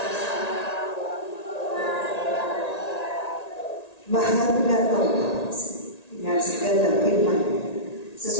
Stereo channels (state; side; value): late; right; 1.9 ms